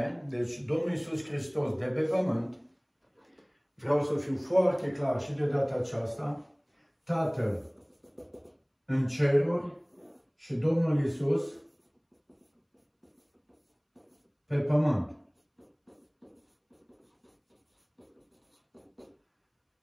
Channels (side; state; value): both; identical; correlation 1.00